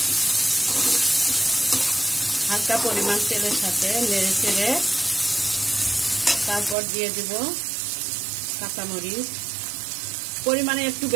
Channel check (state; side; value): drops out; left; at 6.8 s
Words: হালকা পরিমাণ তেলের সাথে নেড়ে চেড়ে তারপর দিয়ে দিব কাঁচামরিচ, পরিমাণে একটু